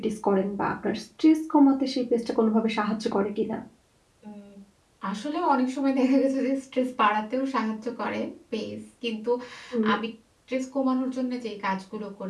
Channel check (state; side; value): identical; both; correlation 1.00